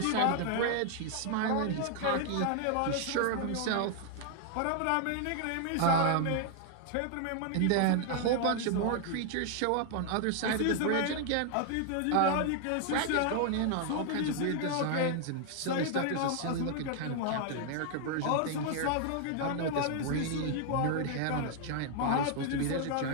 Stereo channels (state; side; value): different; both; correlation 0.00